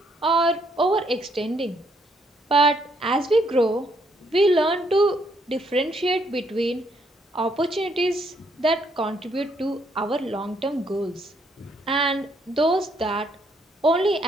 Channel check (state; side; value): normal; both; correlation 0.71